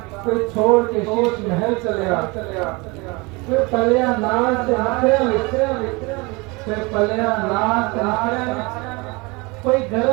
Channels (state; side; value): quieter; left; 26.3 dB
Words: کوئی چھوڑ کے شیش محل چلیا، پھر پلیا نال سے نکھرے پھر پلیا نال سے نکھرے، کوئی